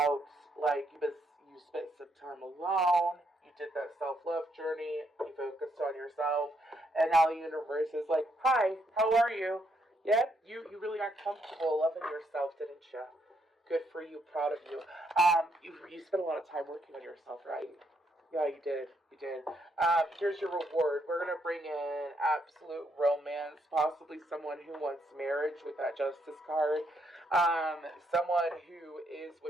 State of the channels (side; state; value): both; normal; correlation 0.75